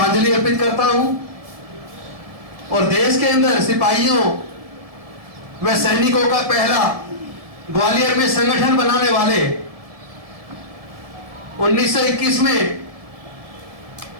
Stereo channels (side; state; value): left; late; 1.7 ms